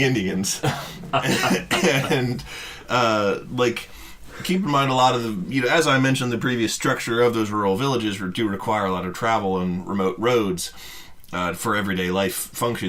Indians. And, keep in mind a lot of the, as I mentioned, the previous structure of those rural villages do require a lot of travel and remote roads for everyday life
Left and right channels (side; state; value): both; identical; correlation 1.00